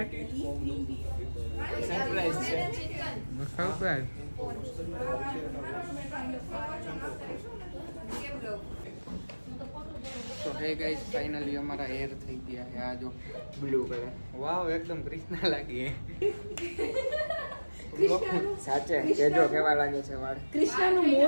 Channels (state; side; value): inverted; both; correlation -1.00